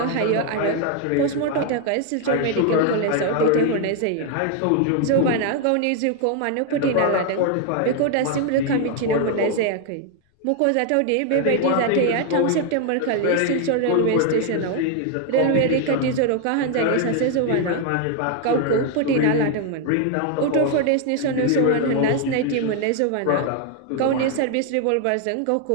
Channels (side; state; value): both; different; correlation 0.01